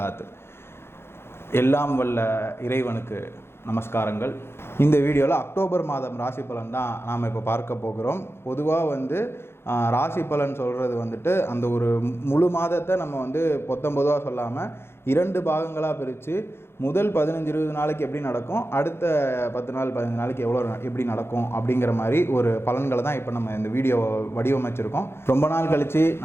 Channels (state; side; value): late; right; 0.12 ms